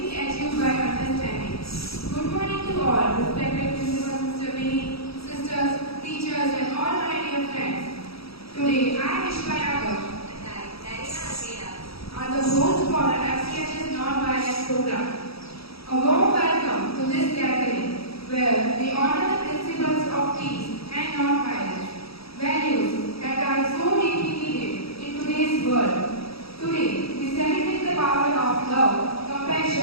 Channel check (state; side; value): late; right; 0.77 ms